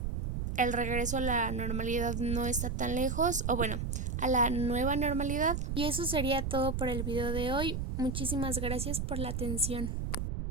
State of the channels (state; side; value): noise; right; rumble, 2 dB below the sound